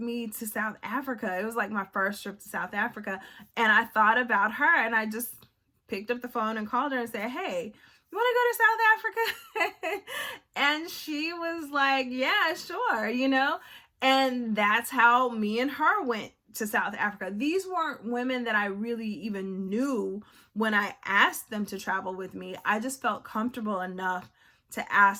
me to South Africa? It was like my first trip to South Africa. And I thought about her, and I just picked up the phone and called her and said, hey, you want to go to South Africa? And she was like, yeah, sure, you know? And that's how me and her went to South Africa. These weren't women that I really even knew when I asked them to travel with me. I just felt comfortable enough to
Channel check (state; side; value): identical; both; correlation 1.00